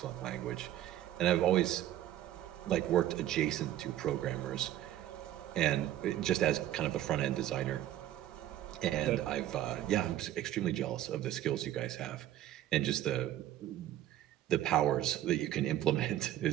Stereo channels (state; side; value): quieter; left; 12.7 dB